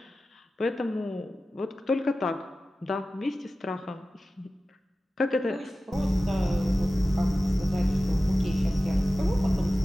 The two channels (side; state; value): both; normal; correlation 0.95